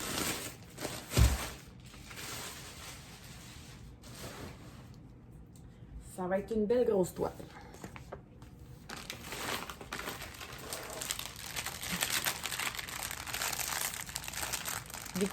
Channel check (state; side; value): identical; both; correlation 1.00